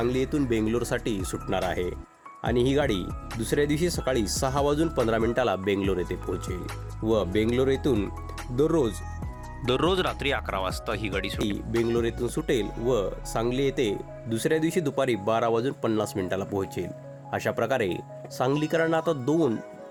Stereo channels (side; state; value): both; identical; correlation 1.00